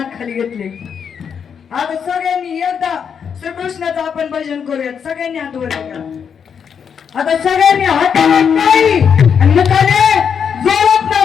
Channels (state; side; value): quieter; right; 7.1 dB